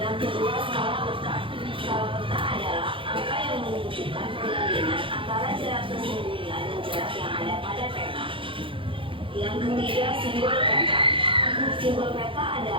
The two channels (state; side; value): late; left; 0.25 ms